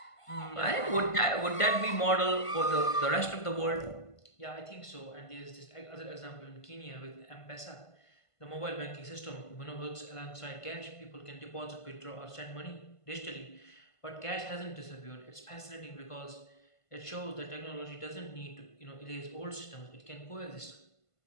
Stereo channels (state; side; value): late; right; 1.5 ms